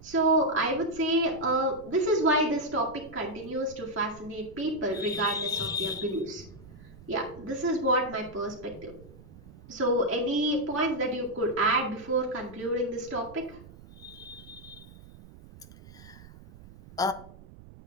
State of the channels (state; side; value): noise; right; rumble, 19 dB below the sound